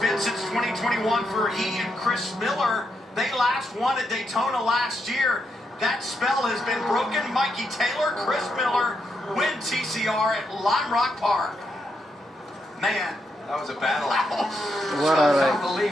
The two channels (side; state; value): both; normal; correlation 0.81